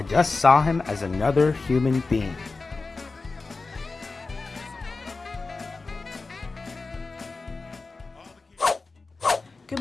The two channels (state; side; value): quieter; right; 3.8 dB